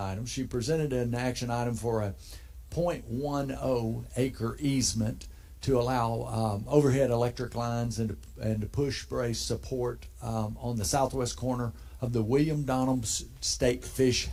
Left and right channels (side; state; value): both; identical; correlation 1.00